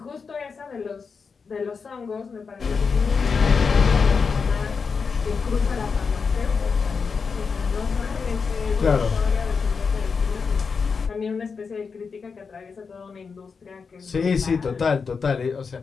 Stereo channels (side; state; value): right; quieter; 5.4 dB